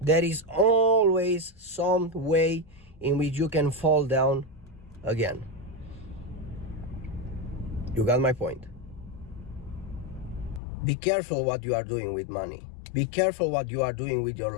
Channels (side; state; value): right; drops out; at 10.6 s